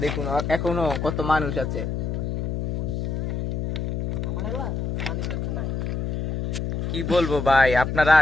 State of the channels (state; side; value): noise; left; hum, 2 dB below the sound